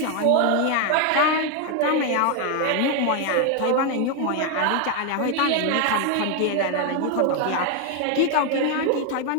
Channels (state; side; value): different; both; correlation 0.01